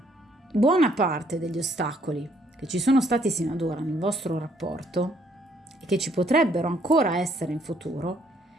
buona parte degli ostacoli che ci sono stati sino ad ora nel vostro rapporto e che ci potrebbero ancora essere in futuro,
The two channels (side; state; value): both; normal; correlation 0.67